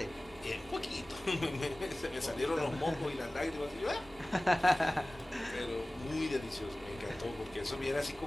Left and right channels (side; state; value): both; normal; correlation 0.98